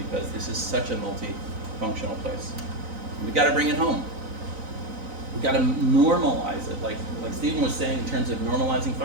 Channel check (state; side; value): late; left; 3.9 ms